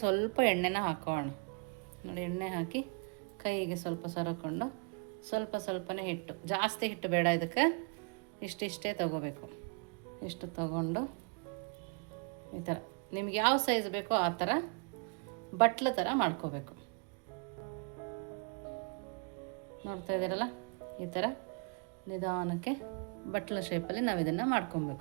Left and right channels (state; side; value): quieter; left; 36.5 dB